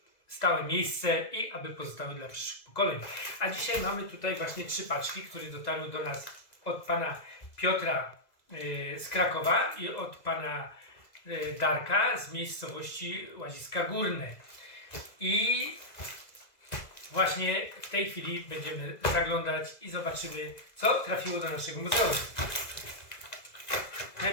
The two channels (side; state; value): right; late; 2.0 ms